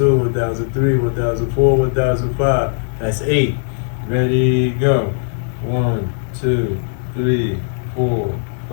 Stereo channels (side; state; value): right; silent; digital silence